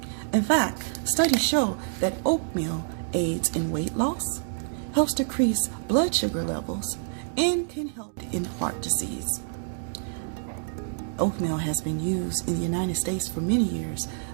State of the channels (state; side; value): silent; left; digital silence